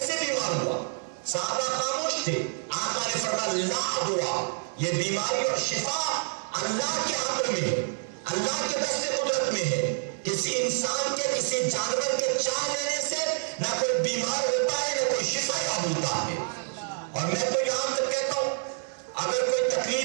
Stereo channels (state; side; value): silent; left; 59 dB below the other